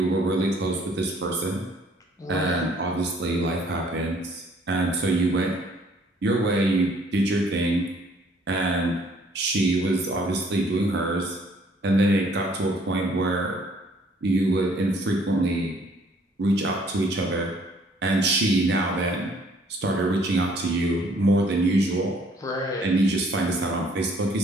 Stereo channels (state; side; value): normal; both; correlation 0.61